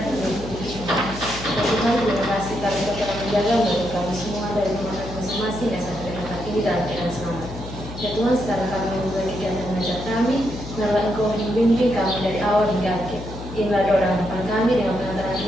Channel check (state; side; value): noise; left; hum, 11 dB below the sound